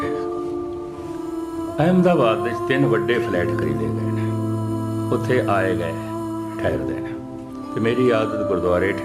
ਅਹਿਮਦਾਬਾਦ ਵਿੱਚ 3 ਵੱਡੇ ਫਲੈਟ ਖਰੀਦੇ ਗਏ ਨੇ। ਉੱਥੇ ਆਏ ਗਏ ਠਹਿਰਦੇ ਨੇ ਤੇ ਮੇਰੀ ਆਦਤ ਗੁਰਦੁਆਰੇ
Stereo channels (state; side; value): identical; both; correlation 1.00